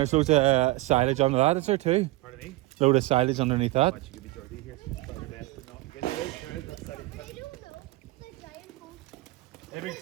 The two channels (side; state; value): left; quieter; 19.6 dB